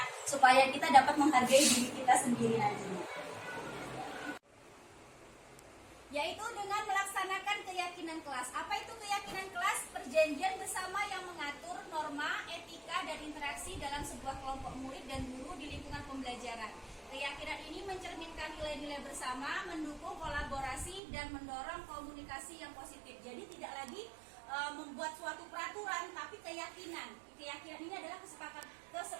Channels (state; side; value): drops out; left; at 21.0 s